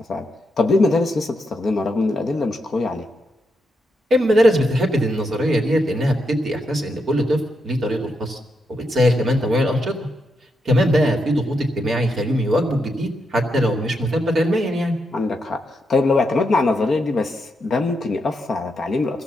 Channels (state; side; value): normal; both; correlation 0.82